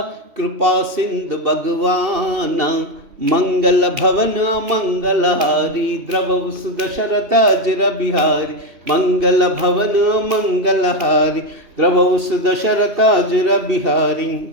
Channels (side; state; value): left; late; 3.0 ms